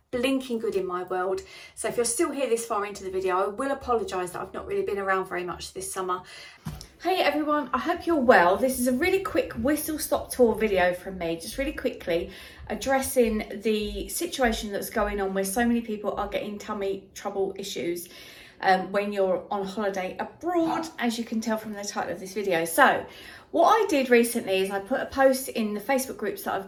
blinking good in my world. So if you're still here this far into the video, I will apologise that I've not really been around very much this summer. Hey everyone, I hope you're well. This is a really quick whistle stop tour video from me, just really quickly addressing the situation that's going on where so many people are getting tummy trouble issues when you're on holiday abroad, as you can tell from the title of this video. So what I did recently is I put a post in the Facebook groups that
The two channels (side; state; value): both; identical; correlation 1.00